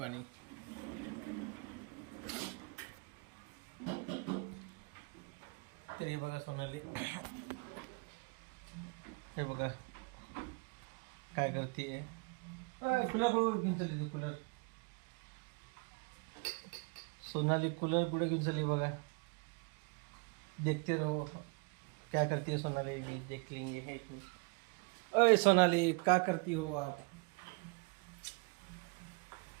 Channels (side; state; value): left; quieter; 33.0 dB